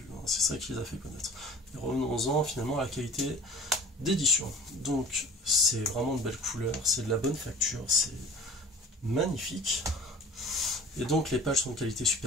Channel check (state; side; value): normal; both; correlation 0.43